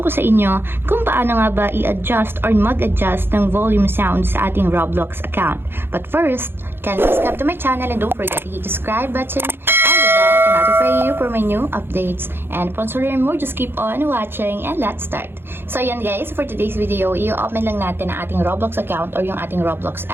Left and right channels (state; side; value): late; left; 0.10 ms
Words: ko sa inyo kung paano nga ba i-adjust or mag-adjust ng volume sound sa ating Roblox account. But first, kindly subscribe to my channel and don't forget to hit the subscribe button and the bell to notify you for my new updates. And once you learn more, just keep on watching and let's start. So yan guys, for today's video, i-open lang natin ang ating Roblox account or yung ating Roblox